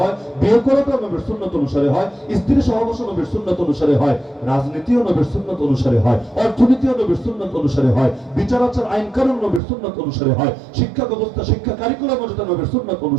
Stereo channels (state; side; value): drops out; left; at 9.6 s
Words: বিয়ে করাটাও নবীর সুন্নাত অনুসারে হয়, স্ত্রী সহবাস নবীর সুন্নাত অনুসারে হয়, রাজনীতিও নবীর সুন্নাত অনুসারে হয়, অর্থনীতিও নবীর সুন্নাত অনুসারে হয়, বিচার আচার আইন কানুন নবীর সুন্নাত অনুসারে হয়, শিক্ষা ব্যবস্থা শিক্ষা কারিকুলাম যাতে নবীর সুন্নাত